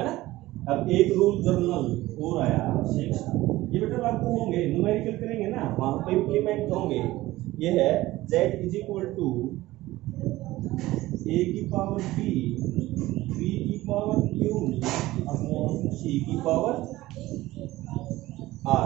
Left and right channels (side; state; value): left; quieter; 17.4 dB